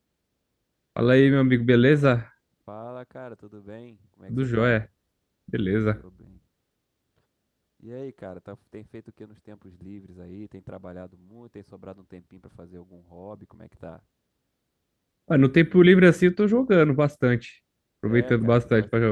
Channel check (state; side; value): identical; both; correlation 1.00